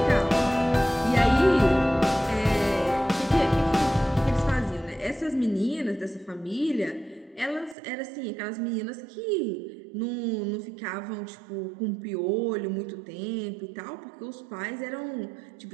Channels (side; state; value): left; drops out; at 7.8 s